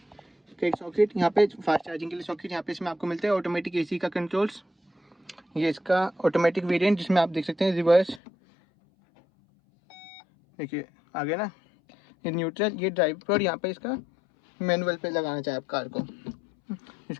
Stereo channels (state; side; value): drops out; right; at 8.2 s